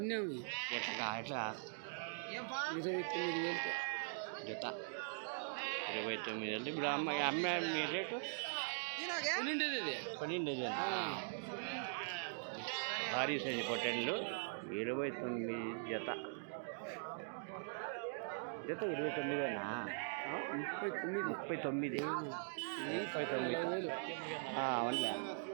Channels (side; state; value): left; silent; digital silence